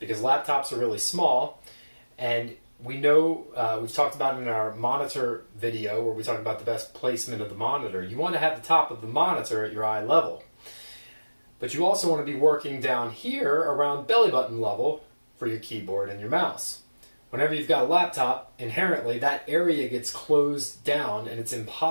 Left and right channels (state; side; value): inverted; both; correlation -1.00